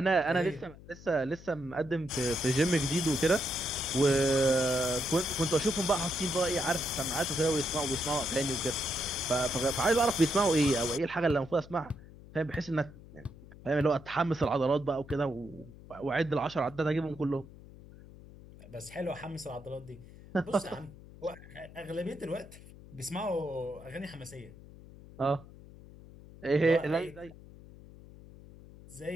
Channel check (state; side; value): noise; left; hum, 19 dB below the sound